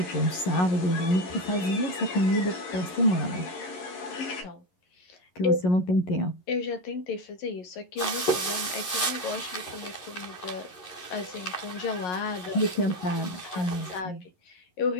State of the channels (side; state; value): right; late; 11 ms